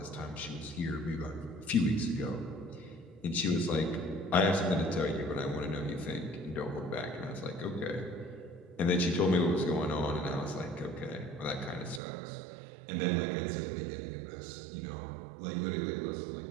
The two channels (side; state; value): left; drops out; at 12.0 s